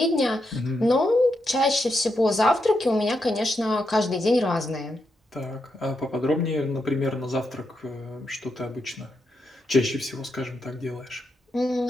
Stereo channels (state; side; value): normal; both; correlation 0.83